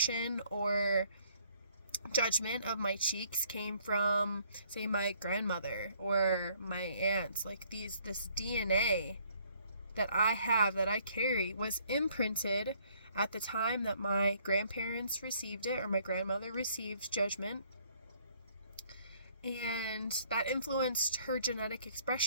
or judgment of my cheeks came from, say, my grandmother or my aunts. Like this DNA that I have, that I carry, was imprinted at the time that my grandparents received it, or my grandmother received judgment, and that influenced her genetic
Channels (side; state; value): both; inverted; correlation -0.63